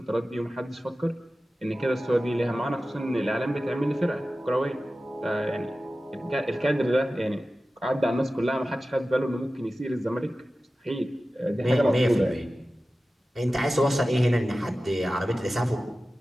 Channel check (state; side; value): normal; both; correlation 0.95